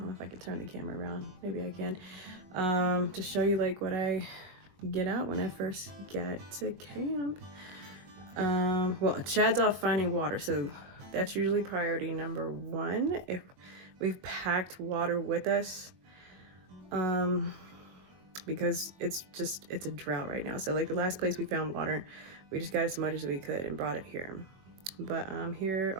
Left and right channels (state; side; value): late; left; 22 ms